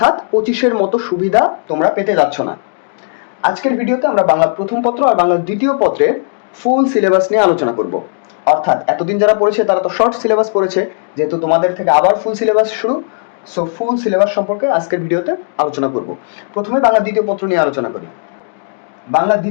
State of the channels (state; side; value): silent; right; 65 dB below the other